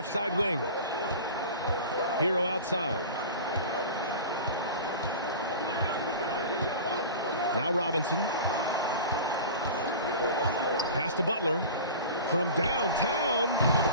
side wing. Hero outside. Now Robinson. Pass to Butler. From downtown.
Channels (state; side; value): inverted; both; correlation -0.35